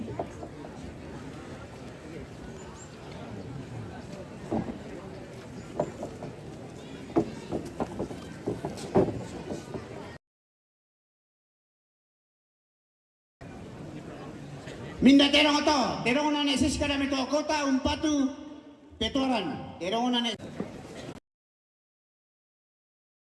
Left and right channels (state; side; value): identical; both; correlation 1.00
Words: Minda terong to, terong na nesis ka na mito kota umpatu petoran, terong na nesis